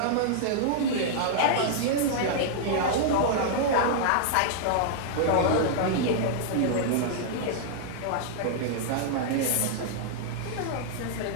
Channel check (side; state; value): both; different; correlation -0.01